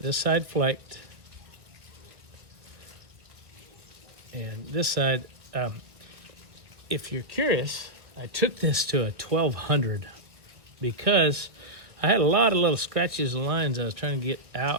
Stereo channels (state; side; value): late; left; 1.4 ms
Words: this side flaked, and this side, if you're curious, I took this to a 1200 because I had a lot of little scratches and lines I was trying to get